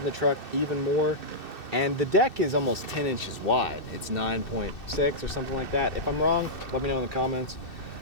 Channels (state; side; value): late; right; 2.6 ms